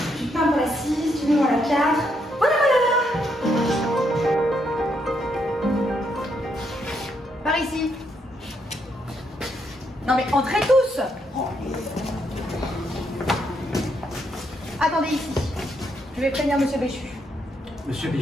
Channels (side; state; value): both; normal; correlation 0.76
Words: Du pain pour la 6, du melon à la 4. Voilà, voilà! Par ici. Non mais entrez tous! Attendez ici. Je vais prévenir Monsieur Béchu. Monsieur